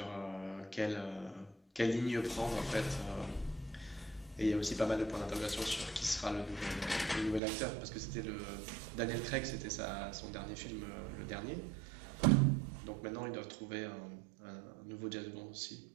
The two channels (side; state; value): left; drops out; at 7.4 s